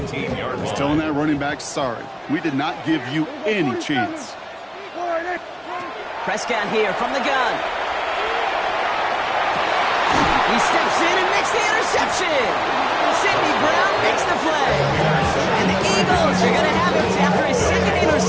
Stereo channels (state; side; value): identical; both; correlation 1.00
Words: is telling that running back, sorry, we did not give you any chance. Prescott here from the gun. He steps in and makes the interception. Sidney Brown makes the play. And the Eagles are going to have it after his 2nd